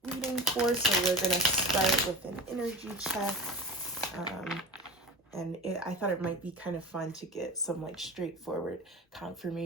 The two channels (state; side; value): normal; both; correlation 0.31